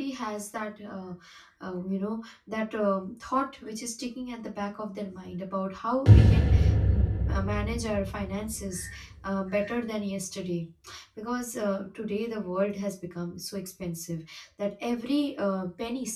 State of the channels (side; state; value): both; identical; correlation 1.00